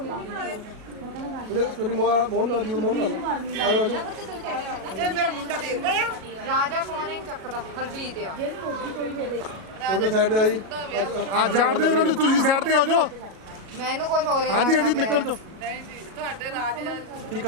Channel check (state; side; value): late; left; 37 ms